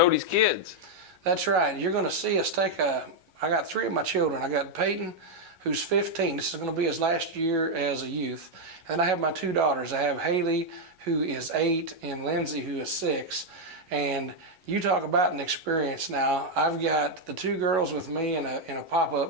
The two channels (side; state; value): left; late; 11 ms